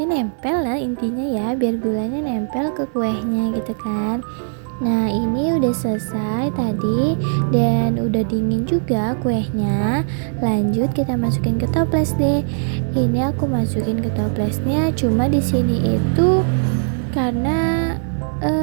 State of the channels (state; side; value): silent; left; digital silence